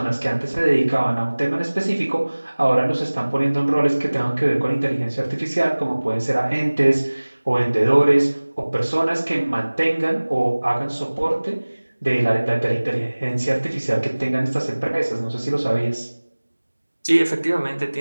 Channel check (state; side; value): inverted; both; correlation -1.00